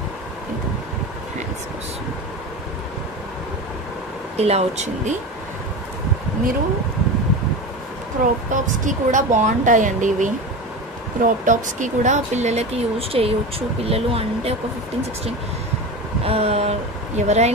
ఇలా వచ్చింది. మీరు క్రాప్ టాప్స్కి కూడా బాగుంటాయండి ఇవి. క్రాప్ టాప్స్కి కూడా పిల్లలకి యూజ్ చేయవచ్చు. పిల్లలు అంటే ఒక 15-16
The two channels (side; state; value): both; normal; correlation 0.27